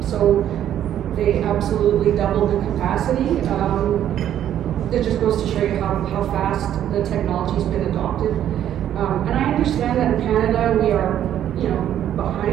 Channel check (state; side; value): quieter; left; 10.8 dB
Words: So they absolutely doubled the capacity. It just goes to show you how fast the technology's been adopted. And I understand that in Canada we are, you know,